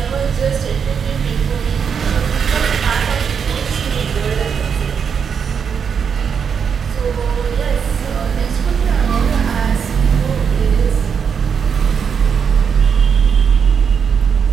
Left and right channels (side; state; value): left; quieter; 6.8 dB